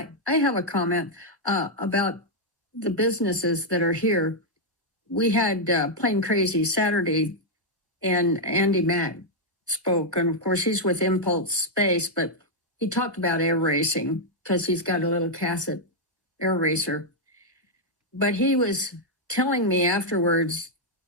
I have a comment about the businesses that are here. We had Plain Crazy Saturday, and Andy Mack spoke, and of course he's with Impulse Space, but he talked about air racing because he's got a little Cassett air racer. But he was telling me afterwards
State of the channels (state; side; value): normal; both; correlation -0.02